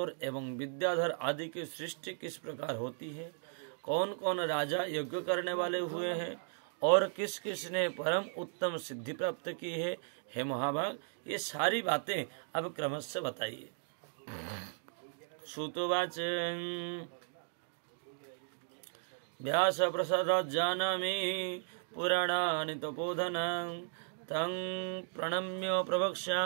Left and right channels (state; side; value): silent; left; digital silence